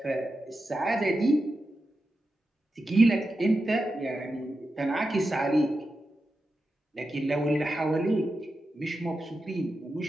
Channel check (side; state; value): both; normal; correlation 0.90